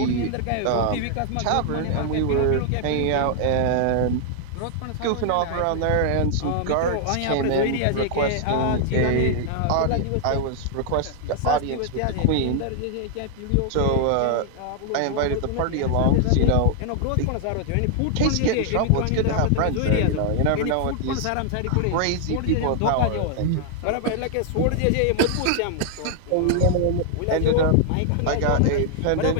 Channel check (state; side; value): different; both; correlation 0.00